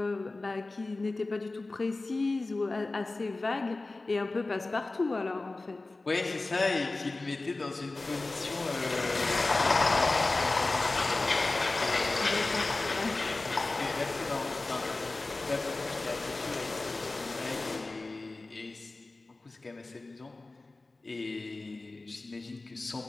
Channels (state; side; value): quieter; right; 3.2 dB